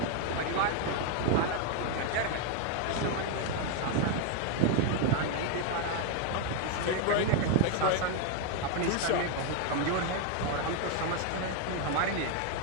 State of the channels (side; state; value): both; different; correlation 0.01